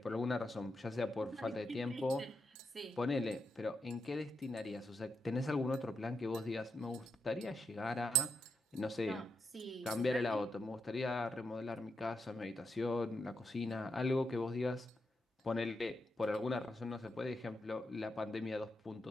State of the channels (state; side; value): normal; both; correlation 0.83